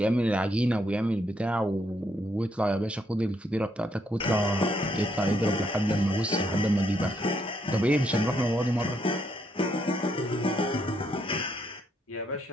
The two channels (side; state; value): both; normal; correlation 0.74